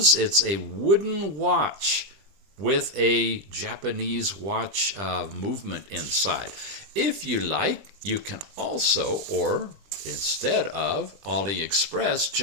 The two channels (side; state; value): left; late; 20 ms